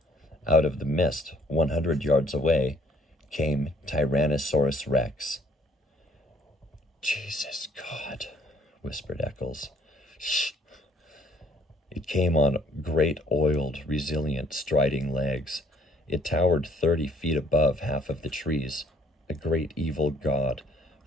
Out of the mist, 100 yards away, came Tyrannosaurus Rex. Jesus God, whispered Eccles. Shh. It came on great, oiled, resilient, striding legs. It towered 30 feet above half of the trees, a great evil god,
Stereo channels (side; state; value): both; normal; correlation 0.61